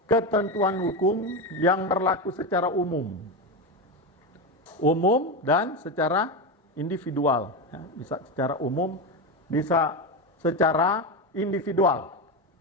ketentuan hukum yang berlaku secara umum. Umum dan secara individual. Bisa secara umum, bisa secara individual.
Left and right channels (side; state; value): both; normal; correlation 0.15